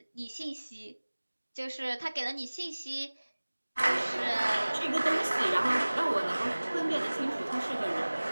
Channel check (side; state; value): both; inverted; correlation -1.00